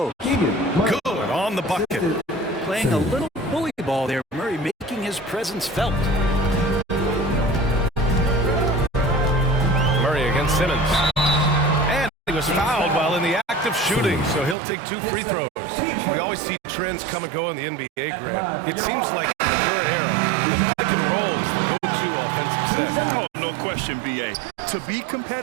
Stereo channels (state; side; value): drops out; left; at 14.6 s